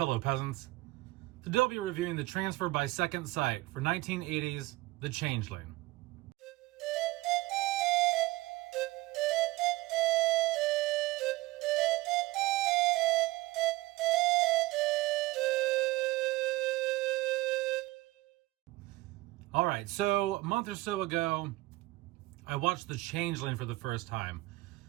peasants. Today I'll be reviewing the transfer by Second Sight for 1980's The Changeling. Alright, so a month or so ago, I watched The Changeling for the first time.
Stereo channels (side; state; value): left; quieter; 19.9 dB